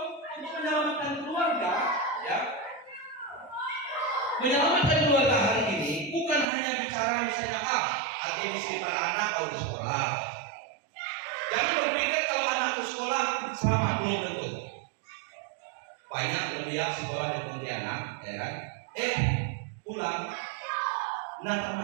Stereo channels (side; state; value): left; drops out; at 6.5 s